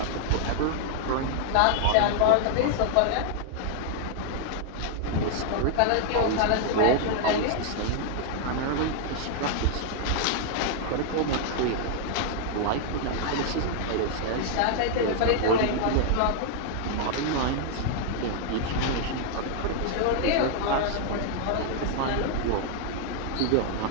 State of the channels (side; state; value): both; different; correlation -0.01